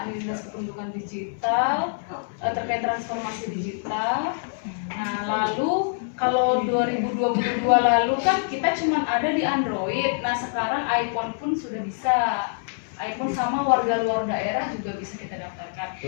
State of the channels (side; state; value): right; silent; 62 dB below the other